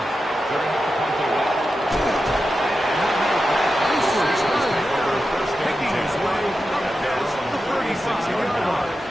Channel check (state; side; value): normal; both; correlation 0.91